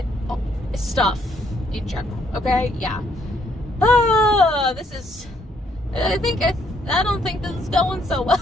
stuff in general. Okay, yeah. This is, I don't think this is going so well.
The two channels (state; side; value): normal; both; correlation 0.70